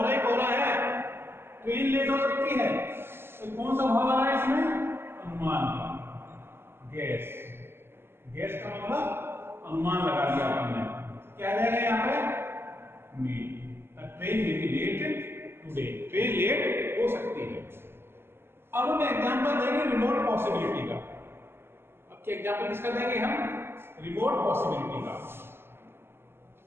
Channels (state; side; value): late; left; 0.11 ms